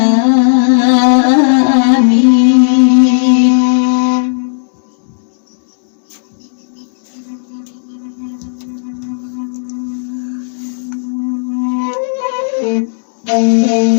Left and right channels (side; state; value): right; silent; digital silence